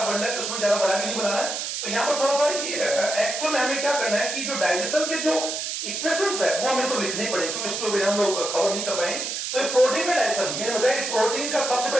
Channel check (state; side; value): noise; right; hiss, 3 dB below the sound